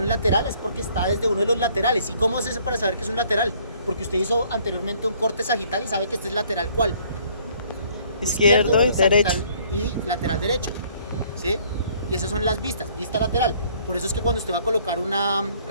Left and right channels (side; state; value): both; inverted; correlation -0.61